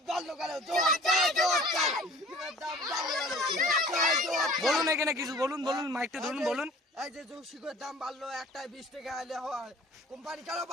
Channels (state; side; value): normal; both; correlation 0.48